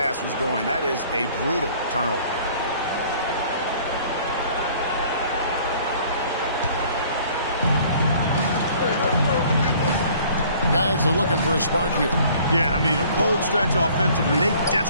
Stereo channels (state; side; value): inverted; both; correlation -0.54